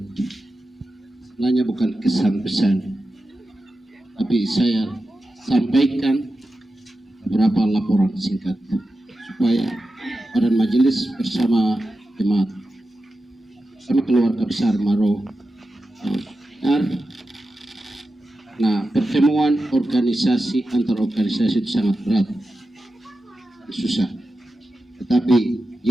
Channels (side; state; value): both; normal; correlation 0.92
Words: sebenarnya bukan kesan pesan, tapi saya sampaikan beberapa laporan singkat supaya badan majelis bersama jemaat sama keluarga besar Maro nah pertemuan organisasi antar organisasi itu sangat berat dan susah, tetapi